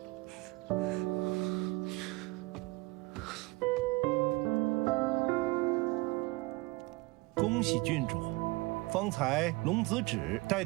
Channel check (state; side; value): quieter; left; 23.5 dB